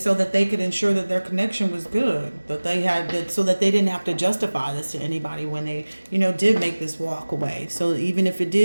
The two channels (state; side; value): inverted; both; correlation -1.00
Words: that they could ensure that their connection was good, that they had that, so that they didn't have to justify this to anybody when they, did make this walk away. So even if it